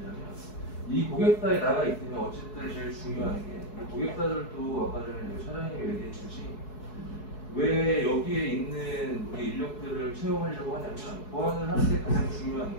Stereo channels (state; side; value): late; right; 4.7 ms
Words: 이 고객사에 나가 있으면 어쨌든 제일 중요한 게 고객사들도 아까 전에 차장님이 얘기했듯이 왜 여기에 있는 우리 인력들을 채용하려고 하냐면 보안을 할 때 가장 중요한